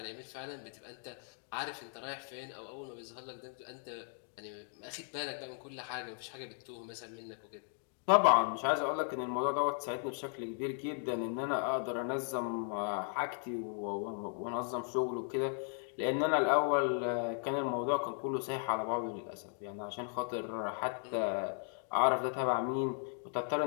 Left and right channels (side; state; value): right; silent; 53 dB below the other